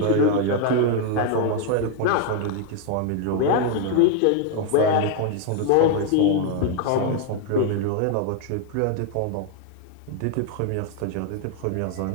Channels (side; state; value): both; different; correlation 0.00